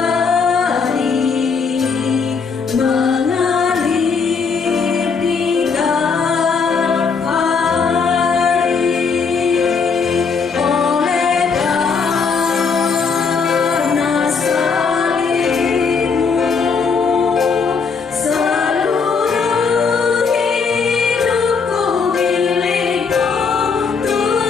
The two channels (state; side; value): quieter; right; 5.3 dB